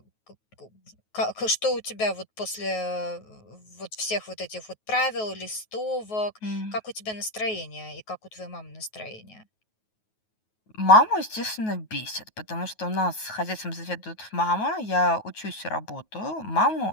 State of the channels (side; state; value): right; late; 9.3 ms